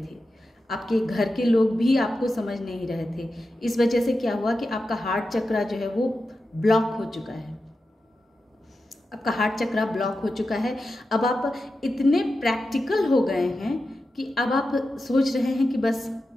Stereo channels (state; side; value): normal; both; correlation 0.91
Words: आपके घर के लोग भी आपको समझ नहीं रहे थे। इस वजह से क्या हुआ कि आपका हार्ट चक्र जो है वो ब्लॉक हो चुका है। आपका हार्ट चक्र ब्लॉक हो चुका है। अब आप इतने प्रैक्टिकल हो गए हैं कि अब आप सोच रहे हैं कि बस